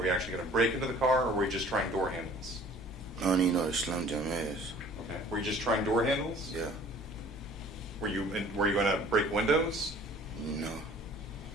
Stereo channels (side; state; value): both; normal; correlation 0.51